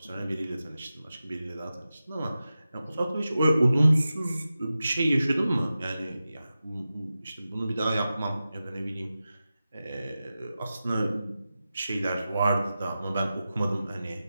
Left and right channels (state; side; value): inverted; both; correlation -0.93